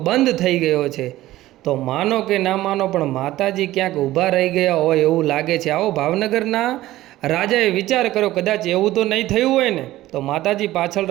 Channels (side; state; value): left; quieter; 15.8 dB